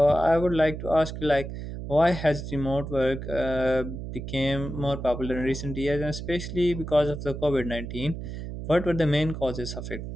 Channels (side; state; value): right; noise; hum, 8 dB below the sound